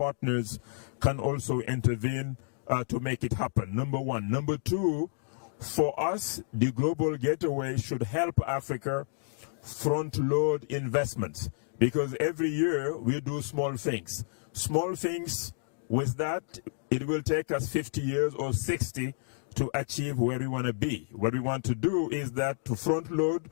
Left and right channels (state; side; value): silent; right; digital silence